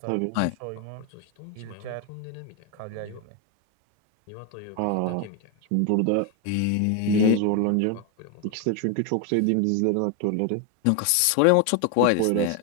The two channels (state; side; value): different; both; correlation 0.01